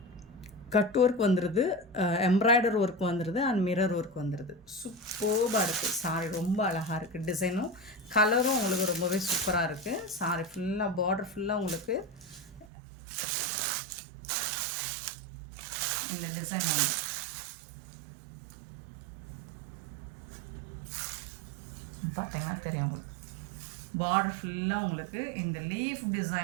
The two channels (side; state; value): left; drops out; at 12.7 s